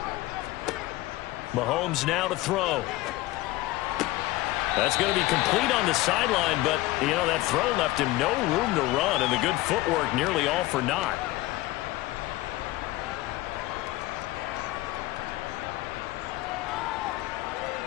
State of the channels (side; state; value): right; quieter; 18.1 dB